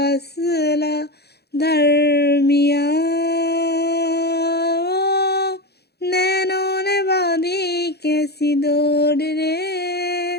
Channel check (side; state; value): right; late; 0.47 ms